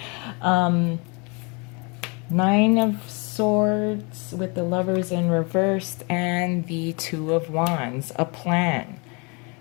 Nine of Swords with the Lovers in reversed and the Two of Wands. A plan.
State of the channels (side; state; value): right; quieter; 31.3 dB